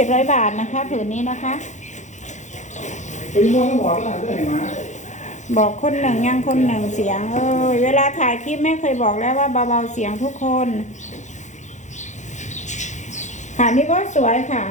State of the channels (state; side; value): late; right; 0.35 ms